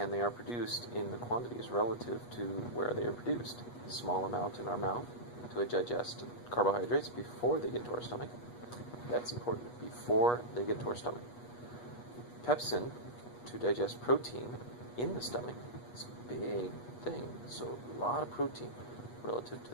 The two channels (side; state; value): right; late; 8.3 ms